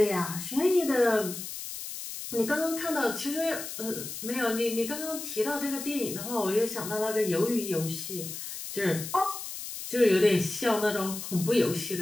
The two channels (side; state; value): left; noise; hiss, 8 dB below the sound